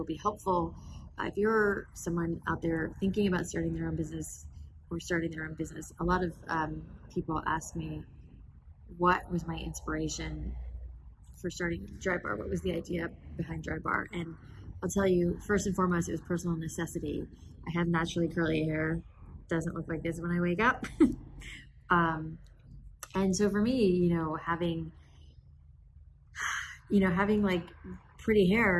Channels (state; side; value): identical; both; correlation 1.00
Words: be helpful if you're someone out there thinking about starting their own business or starting their own business. A lot of people ask me, what was my inspiration for starting DryBar? What was the idea behind DryBar? And I'll tell you, first and foremost, it was personal necessity. I have naturally curly hair. Doesn't look like this when I wake up. And so for me, having like pretty